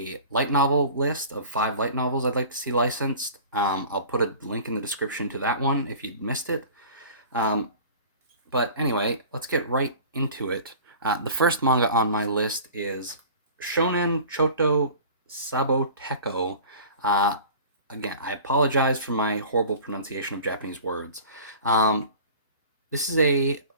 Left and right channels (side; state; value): both; inverted; correlation -0.42